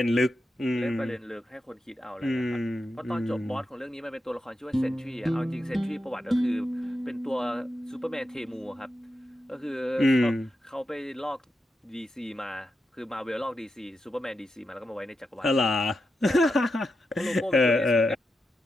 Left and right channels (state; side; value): normal; both; correlation 0.87